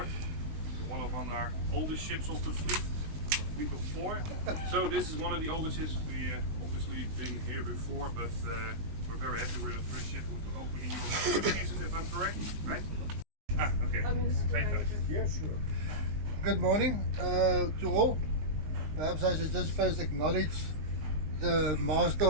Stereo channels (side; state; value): left; late; 19 ms